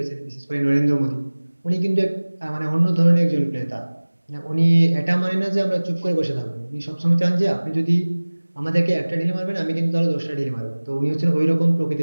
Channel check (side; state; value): both; inverted; correlation -1.00